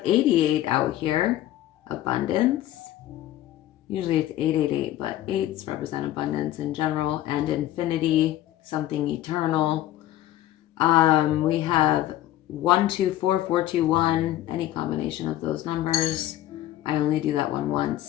88 out here. Abundance. Usually it's 888, but 8s represent abundance in general, and infinity, something eternal. We have 1, 2, 4, 4, 2, 1, any combination of those numbers. I only do that one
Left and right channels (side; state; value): right; quieter; 13.7 dB